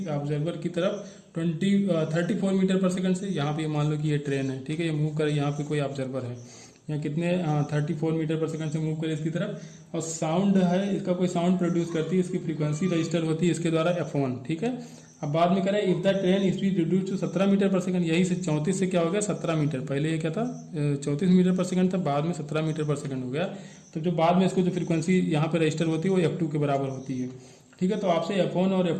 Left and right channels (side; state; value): both; identical; correlation 1.00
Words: ऑब्जर्वर की तरफ 34 मीटर पर सेकंड से। यहाँ पे मान लो कि ये ट्रेन है। ठीक है, ये मूव करे, यहाँ पे कोई ऑब्जर्वर है, यहाँ कितने 34 मीटर पर सेकंड से मूव करे इसकी तरफ, और साउंड है, इसका कोई साउंड प्रोड्यूस करती है, इसकी फ्रीक्वेंसी रजिस्टर होती है इसके द्वारा f1। ठीक है, अब बाद में करें if the train speed reduce to 17 metre per second, यही से 34 से क्या हो गया 17 मीटर, पहले ये क्या था 34 मीटर पर सेकंड था, बाद में 17 मीटर पर सेकंड हो गया। तो जो बाद में इसको जो फ्रीक्वेंसी यहाँ पे रजिस्टर होती है वो f2 के बराबर होती है। ठीक है, तो आपसे f1 और